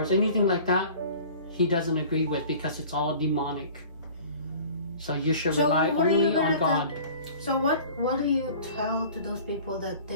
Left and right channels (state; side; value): inverted; both; correlation -0.45